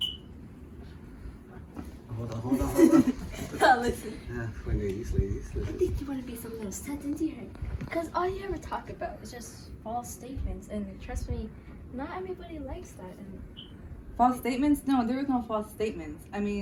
Hold on. Listen. Ladies. I think you want to be something set into her. Because all you ever talk about is just false statements. And trust me, not everybody likes that. And false statements? No, there is no false statements. I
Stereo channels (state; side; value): identical; both; correlation 1.00